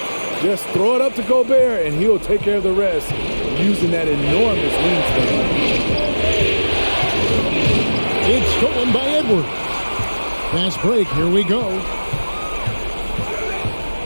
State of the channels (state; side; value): inverted; both; correlation -1.00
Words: Just throw it up to Gobert, and he'll take care of the rest using that enormous wingspan. It's stolen by Edwards. Fast break. Here we go.